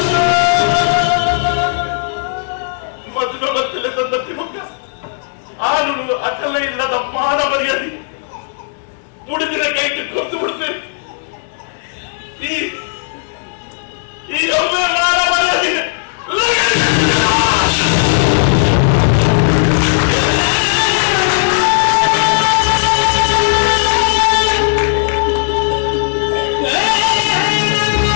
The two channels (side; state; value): right; silent; digital silence